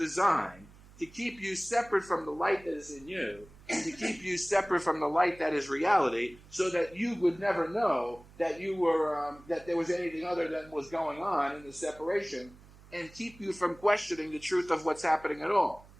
to keep you separate from the light that is in you and to keep you separate from the light that is reality so that you would never know that you were, that there was anything other than was going on in the separation and keep you from questioning the truth of what's happening at all.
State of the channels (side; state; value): right; noise; hum, 23 dB below the sound